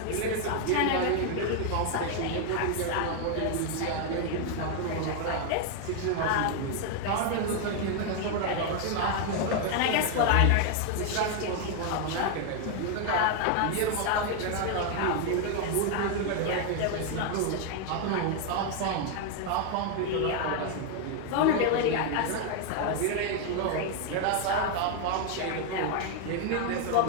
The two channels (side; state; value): both; different; correlation 0.00